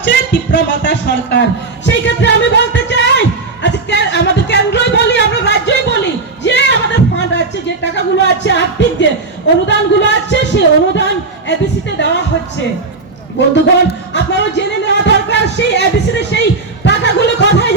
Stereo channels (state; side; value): quieter; left; 3.8 dB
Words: তীব্রমাতা সরকার। সেই ক্ষেত্রে আমি বলতে চাই, আজকে আমাদের কেন্দ্রই বলি, আমরা রাজ্যই বলি, যে আমাদের ফান্ড আছে, যে টাকাগুলো আছে, আর্থিক যে অনুদানগুলো আছে, সেই অনুদান এবিসিতে দেওয়া হচ্ছে। বন্ধুগণ, আপনারা জেনে নেওয়া দরকার সেই এবিসিতে সেই টাকাগুলো কোথায়